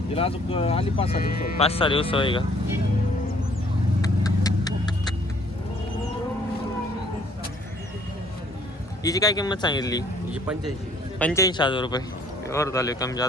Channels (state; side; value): normal; both; correlation 0.60